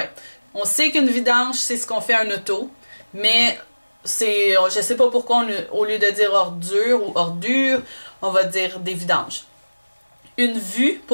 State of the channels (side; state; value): both; inverted; correlation -1.00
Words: On sait qu'une vidange, c'est ce qu'on fait à un auto. Mais... je sais pas pourquoi, au lieu de dire ordure ou ordure, on va dire des vidanges. Une vue